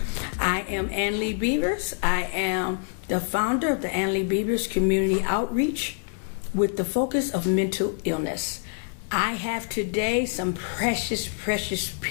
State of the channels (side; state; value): right; silent; 61 dB below the other